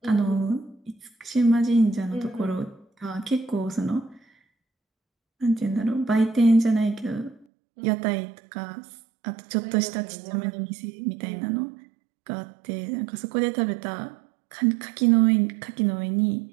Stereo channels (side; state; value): left; drops out; at 7.5 s